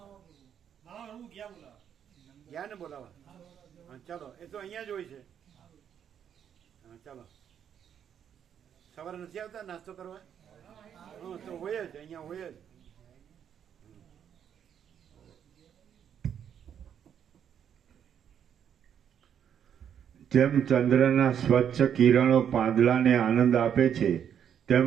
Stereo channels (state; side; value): quieter; left; 8.7 dB